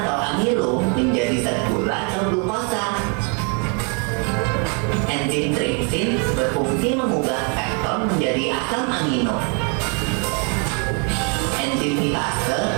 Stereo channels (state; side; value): quieter; left; 36.4 dB